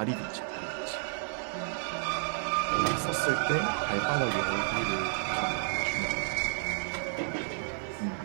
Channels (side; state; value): left; silent; 57 dB below the other